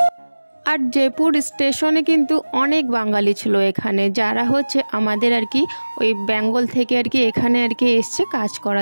আর জয়পুর স্টেশনে কিন্তু অনেক বাঙালি ছিল এখানে, যারা হচ্ছে আমাদের আর কি ওই বেঙ্গল থেকে আর কি এখানে আর কি এসছে কাজ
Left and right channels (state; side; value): inverted; both; correlation -1.00